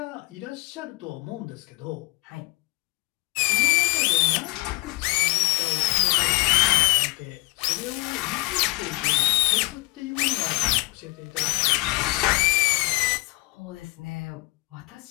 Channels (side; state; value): right; quieter; 23.9 dB